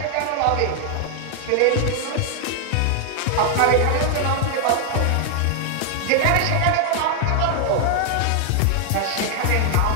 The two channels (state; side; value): different; both; correlation 0.00